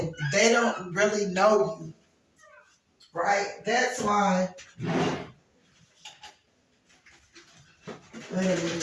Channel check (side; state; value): both; identical; correlation 1.00